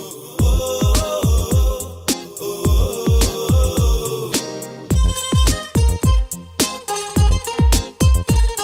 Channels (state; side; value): identical; both; correlation 1.00